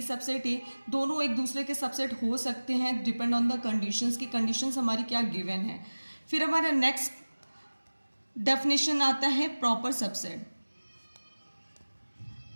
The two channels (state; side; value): inverted; both; correlation -1.00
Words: सबसेट A, दोनों एक दूसरे के सबसेट हो सकते हैं डिपेंड ऑन द कंडीशंस की कंडीशंस हमारी क्या गिवन है. फिर हमारा नेक्स्ट डेफिनेशन आता है proper subset.